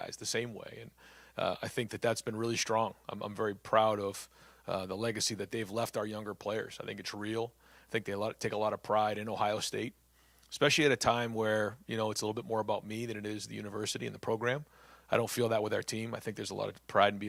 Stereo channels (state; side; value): identical; both; correlation 1.00